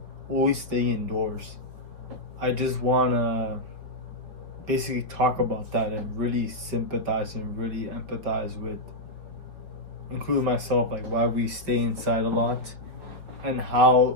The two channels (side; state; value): left; late; 4.9 ms